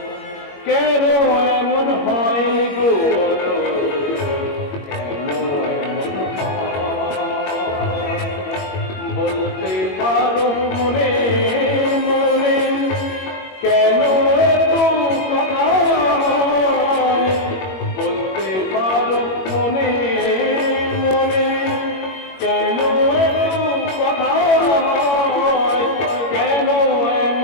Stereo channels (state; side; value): late; right; 21 ms